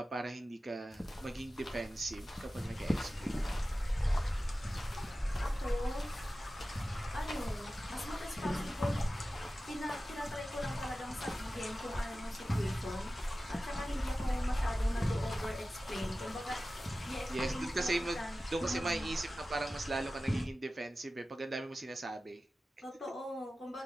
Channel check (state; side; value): normal; both; correlation 0.95